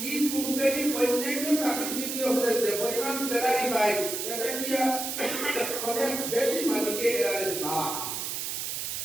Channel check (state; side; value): noise; right; hiss, 3 dB below the sound